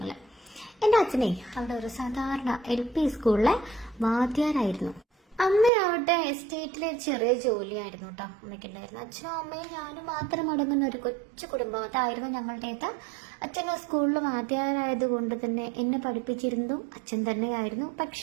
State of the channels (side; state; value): left; drops out; at 5.7 s